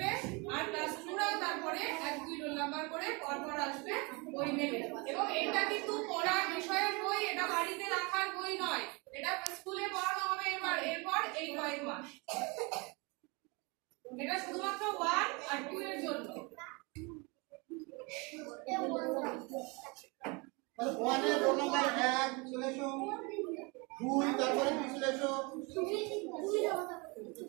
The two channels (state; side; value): quieter; left; 28.7 dB